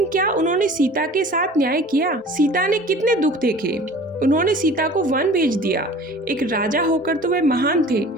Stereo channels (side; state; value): both; normal; correlation 0.44